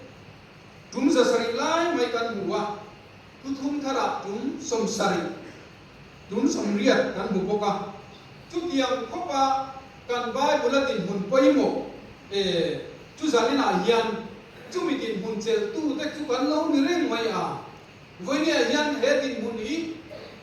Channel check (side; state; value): both; identical; correlation 1.00